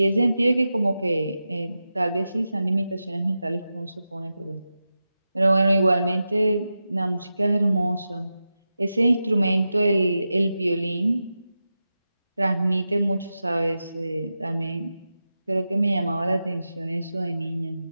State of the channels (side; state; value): both; inverted; correlation -0.92